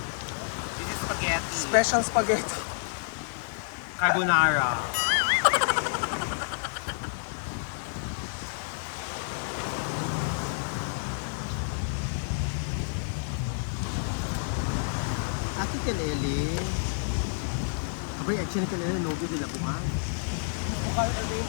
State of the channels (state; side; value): silent; right; digital silence